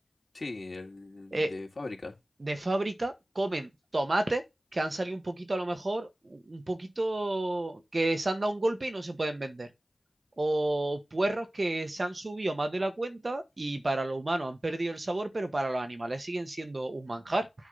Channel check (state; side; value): normal; both; correlation 0.98